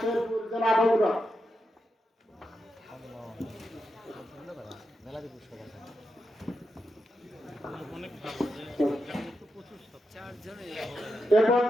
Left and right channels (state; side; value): normal; both; correlation 0.86